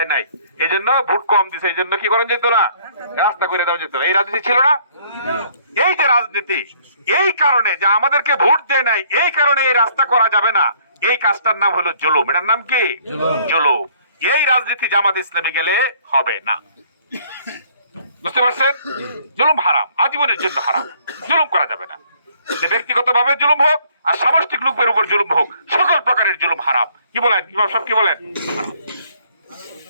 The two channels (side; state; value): both; inverted; correlation -0.61